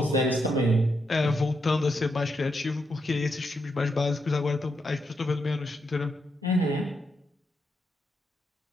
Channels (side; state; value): both; normal; correlation 0.82